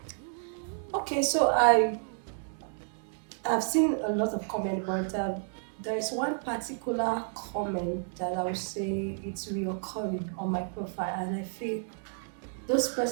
Okay, so I've seen a lot of comments, but there is one particular comment that I would say it's reoccurring on my profile, and I feel those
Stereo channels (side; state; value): left; silent; 57 dB below the other